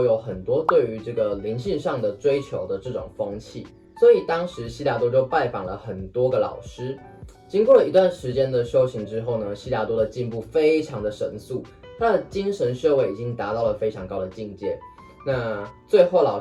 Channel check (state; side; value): identical; both; correlation 1.00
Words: 有很多对于这个灵性上的追求的这种风气，所以当时悉达多就拜访了很多个老师。经过了一段时间的修行之后呢，悉达多的进步非常的神速。他的精神修为已经达到了非常高的境界，那最后老